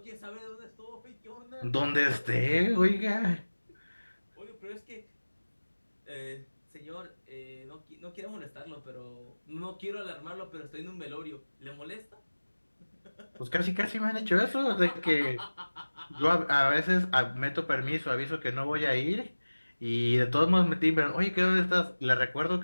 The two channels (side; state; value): both; inverted; correlation -1.00